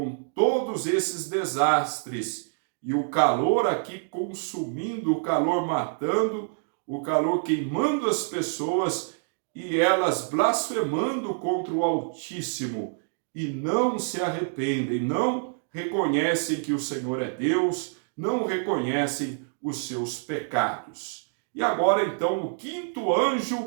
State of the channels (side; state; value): left; silent; digital silence